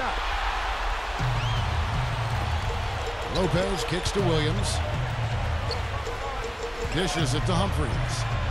Lopez kicks to Williams. Dishes it to Humphries.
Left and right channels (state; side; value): identical; both; correlation 1.00